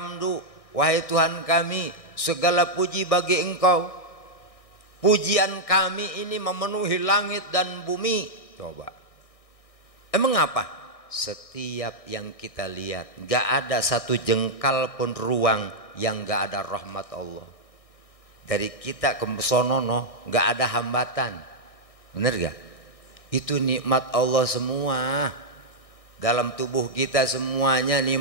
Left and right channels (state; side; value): late; right; 1.6 ms